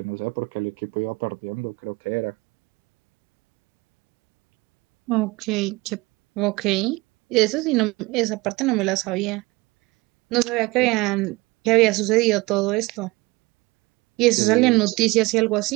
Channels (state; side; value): quieter; left; 22.4 dB